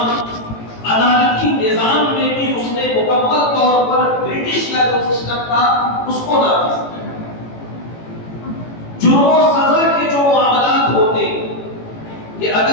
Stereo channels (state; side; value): late; right; 18 ms